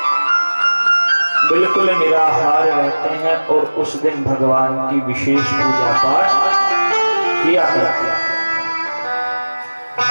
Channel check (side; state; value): both; inverted; correlation -1.00